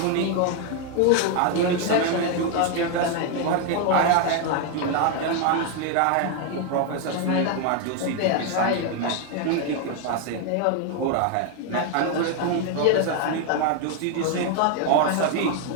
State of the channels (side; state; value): both; different; correlation 0.01